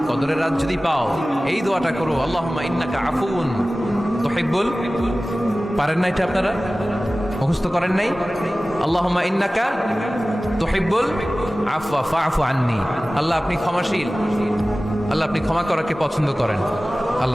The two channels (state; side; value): normal; both; correlation 0.97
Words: কদরের রাত যদি পাও এই দোয়াটা করো, আল্লাহুম্মা ইন্নাকা আফুন তুহিব্বুল। পারেন না এটা আপনারা? মুখস্থ করেন নাই? আল্লাহুম্মা ইন্নাকা তুহিব্বুল আফওয়া ফাআফু আন্নি। আল্লাহ আপনি ক্ষমাশীল, আল্লাহ আপনি ক্ষমা করাকে পছন্দ করেন,